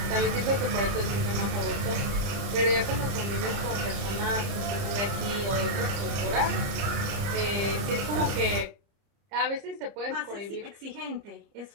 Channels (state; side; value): late; left; 30 ms